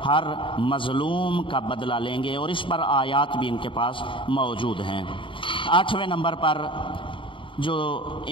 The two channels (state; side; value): late; right; 0.25 ms